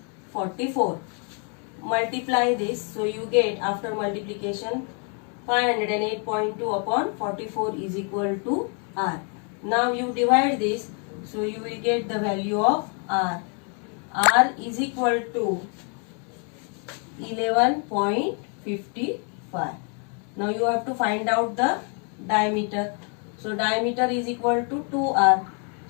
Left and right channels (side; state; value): right; quieter; 39.3 dB